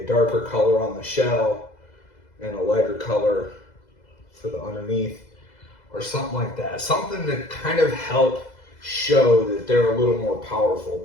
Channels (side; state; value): right; late; 2.0 ms